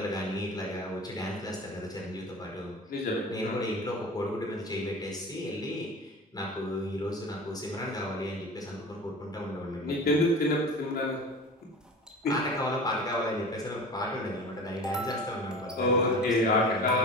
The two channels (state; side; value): normal; both; correlation 0.35